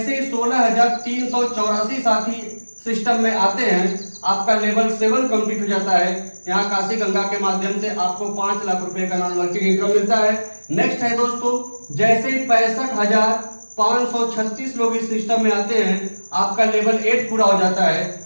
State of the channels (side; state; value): both; inverted; correlation -1.00